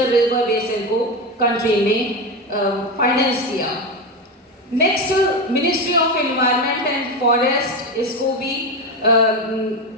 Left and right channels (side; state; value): both; normal; correlation 0.16